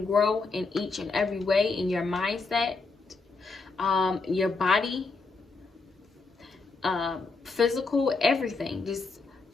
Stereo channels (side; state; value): right; quieter; 4.0 dB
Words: grow in each and every way in your mindset, your body, physical, everything. Just